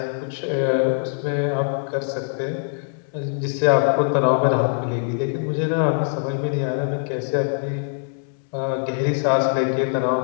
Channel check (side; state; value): right; silent; digital silence